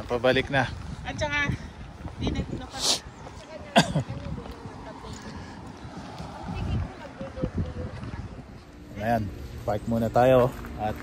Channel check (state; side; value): identical; both; correlation 1.00